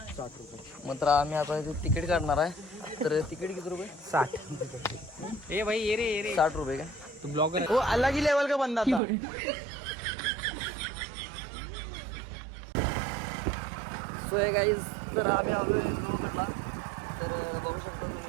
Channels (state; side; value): drops out; left; at 9.0 s